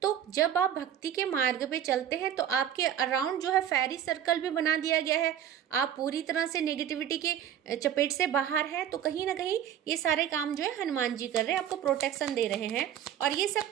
तो जब आप भक्ति के मार्ग पे चलते हैं तो आपके अराउंड जो है फेरी सर्कल भी बना दिया गया है, आप पूरी तरह से नेगेटिविटी के चपेट से बाहर हैं। तो कहीं ना कहीं ये सारे काम जो है हनुमान जी कर रहे हैं, आपको प्रोटेक्शन दे रहे हैं। और ये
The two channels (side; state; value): left; quieter; 10.0 dB